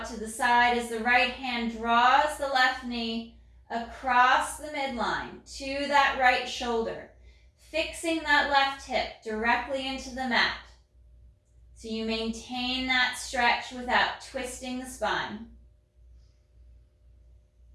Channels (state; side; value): identical; both; correlation 1.00